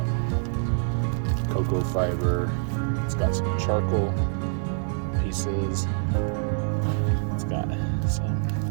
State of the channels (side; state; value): left; silent; digital silence